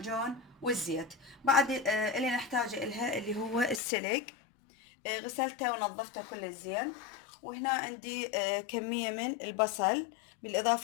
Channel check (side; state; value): right; drops out; at 3.8 s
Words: والزيت. بعد اللي نحتاجه الها اللي هو السلق. غسلته ونظفته كل زين. وهنا عندي كمية من البصل